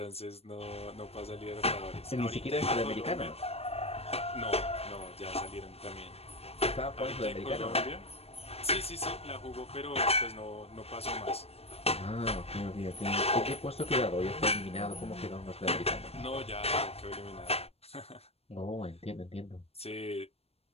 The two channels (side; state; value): right; late; 0.29 ms